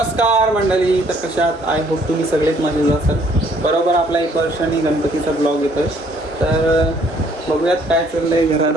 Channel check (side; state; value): both; normal; correlation 0.63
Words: नमस्कार मंडळी, तर कशात आय होप तुम्ही सगळेच मजेत असाल. बरोबर आपला 1 वर्षांनी गणपतीचा ब्लॉग येतोय. तर बघूयात काय चाललंय घरात